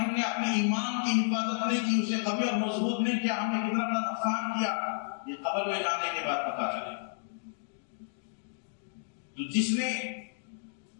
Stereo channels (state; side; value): silent; right; digital silence